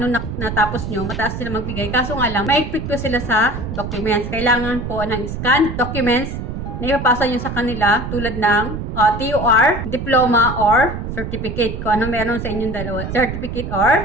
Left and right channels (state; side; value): noise; right; rumble, 6 dB below the sound